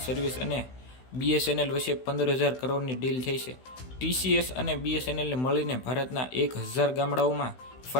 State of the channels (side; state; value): right; late; 16 ms